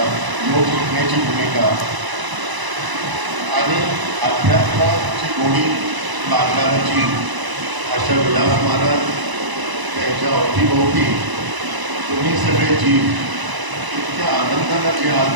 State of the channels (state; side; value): late; left; 1.0 ms